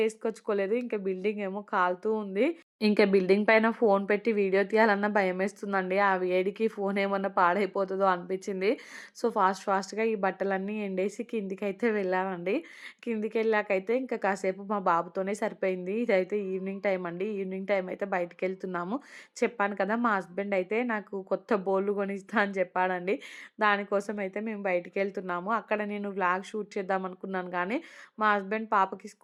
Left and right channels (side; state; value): both; identical; correlation 1.00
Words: ఇంకా బిల్డింగ్ ఏమో కాలుతూ ఉంది. ఇంకా బిల్డింగ్ పైన ఫోను పెట్టి వీడియో తీయాలన్నా భయమేస్తుందండి. ఆ వేడికి ఫోను ఏమన్నా పాడైపోతదో అనిపిచ్చింది. సో, ఫాస్ట్‌గా ఈ బట్టలన్నీ ఎండేసి కిందికైతే వెళ్ళానండి. కిందికెళ్ళాకైతే ఇంకా కాసేపు మా బాబుతోనే సరిపోయింది. ఇదైతే ఈవినింగ్ టైమ్ అండి. ఈవినింగ్ టైమ్ అయితే బయటికెళ్తున్నాము. చెప్పాను కదా! మా హస్బెండ్ అయితే నాకు కొత్త బోళ్ళు కొనిస్తా అని చెప్పాడండి. దానికోసం అయితే మేము బయటికెళ్తున్నాము. అక్కడ నేను వ్లాగ్ షూట్ చేద్దామనుకున్నాను గానీ, మా హస్బెండ్ పాపకి